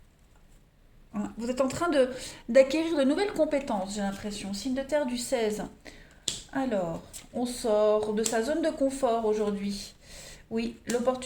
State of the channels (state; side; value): identical; both; correlation 1.00